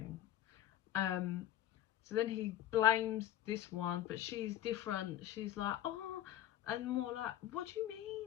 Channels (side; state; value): right; quieter; 12.4 dB